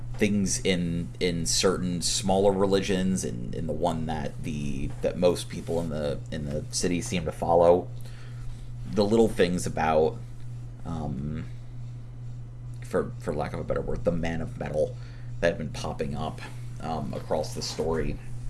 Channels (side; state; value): both; identical; correlation 1.00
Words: things in certain smaller religions, and in the one that most people in the city seem to follow, the little things about, um, for lack of a better word, the man of metal that have been popping up across the story,